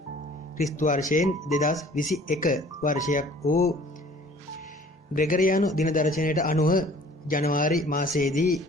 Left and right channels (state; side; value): normal; both; correlation 0.52